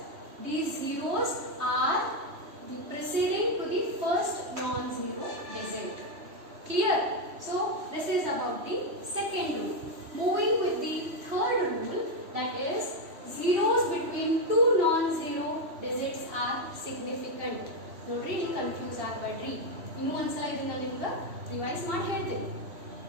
these zeros are the preceding to the first non-zero digit. Clear? So this is about the second rule. Moving with the third rule, that is zeros between two non-zero digits are significant. ನೋಡ್ರಿ, ನೀವು confuse ಆಗಬೇಡ್ರಿ. ಇನ್ನೂ ಒಂದ್ಸಲ ಇದನ್ನ ನಿಮ್ಗೆ revise ಮಾಡಿ ಹೇಳ್ತೀನಿ.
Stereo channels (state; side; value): late; left; 3.1 ms